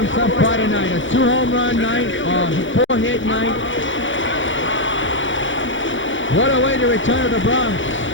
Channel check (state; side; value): late; right; 0.56 ms